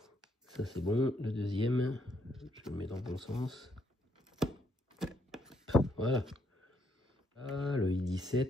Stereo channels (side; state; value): both; normal; correlation 0.73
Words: Ça c'est bon. Le deuxième, je le mets dans le bon sens. Voilà. Ah, le